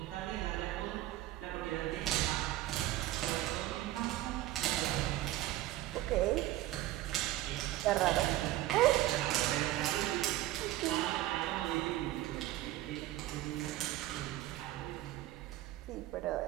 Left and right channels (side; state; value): left; quieter; 15.5 dB